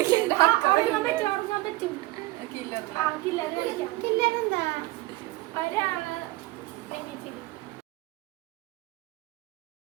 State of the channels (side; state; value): left; quieter; 19.8 dB